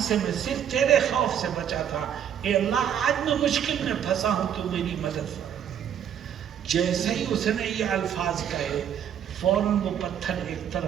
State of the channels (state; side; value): quieter; left; 9.2 dB